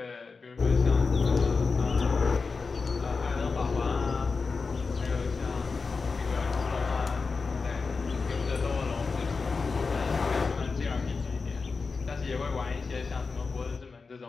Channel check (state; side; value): quieter; right; 4.5 dB